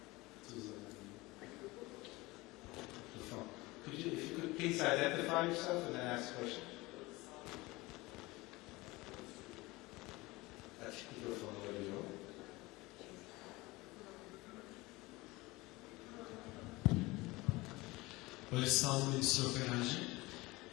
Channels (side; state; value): right; quieter; 21.7 dB